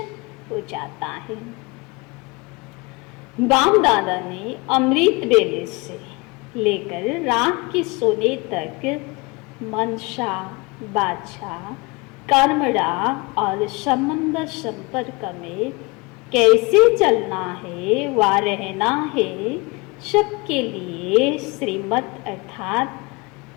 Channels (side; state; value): right; quieter; 26.1 dB